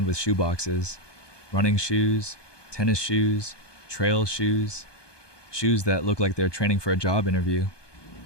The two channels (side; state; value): right; late; 1.2 ms